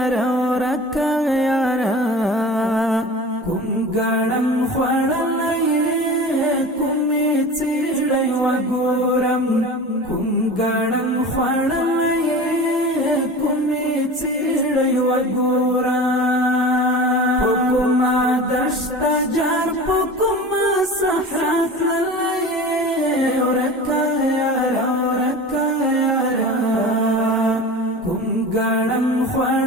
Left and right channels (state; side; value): normal; both; correlation 0.35